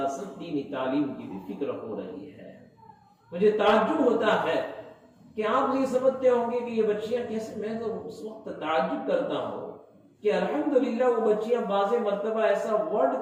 ساتھ دینی تعلیم کی بھی فکر ہو رہی ہے۔ مجھے تعجب ہوتا ہے کہ آپ یہ سمجھتے ہوں گے کہ یہ بچیاں کیسے، میں تو اس وقت تعجب کرتا ہوں کہ الحمدللہ وہ بچیاں بعض مرتبہ ایسا ورڈ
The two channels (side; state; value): both; identical; correlation 1.00